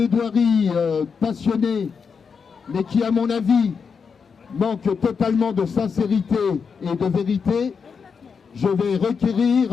passionnée, mais qui, à mon avis, manque totalement de sincérité et de vérité, je vais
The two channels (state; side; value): quieter; right; 5.9 dB